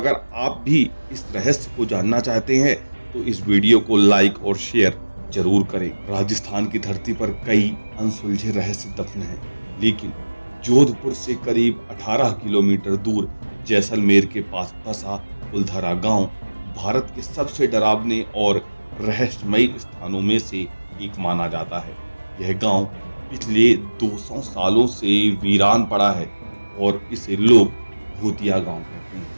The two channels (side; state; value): both; inverted; correlation -1.00